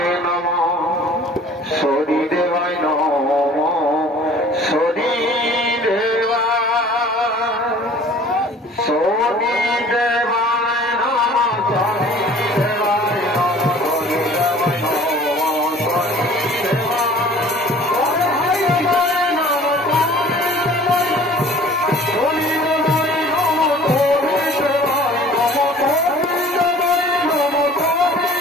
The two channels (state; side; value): normal; both; correlation 0.49